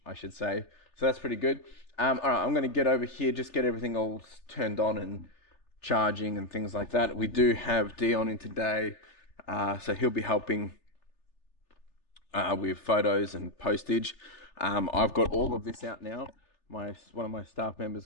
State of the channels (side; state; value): right; late; 3.4 ms